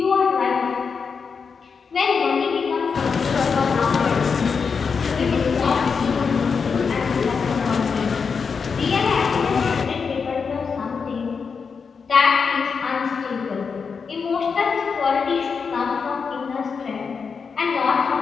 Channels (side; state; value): right; quieter; 5.6 dB